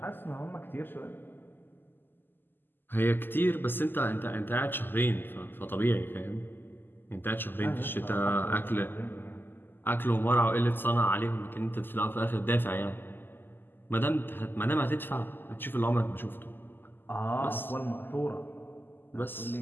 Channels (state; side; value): late; right; 0.094 ms